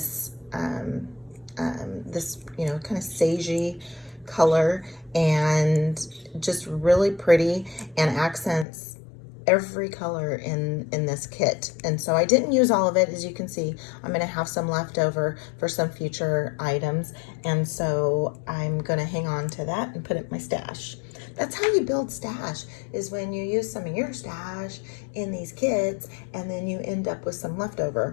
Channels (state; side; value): drops out; right; at 8.7 s